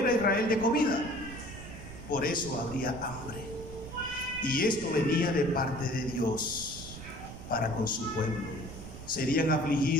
a Israel de comida. Por eso habría hambre. Y esto venía de parte de Dios para con su pueblo. Serían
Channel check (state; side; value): noise; right; rumble, 12 dB below the sound